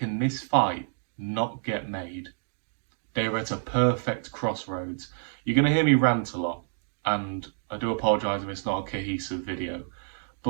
this fight not get made? They're at a perfect crossroads. You're going to hear me rant a lot, and I do apologise if it's not a cohesive video,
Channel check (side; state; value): left; silent; digital silence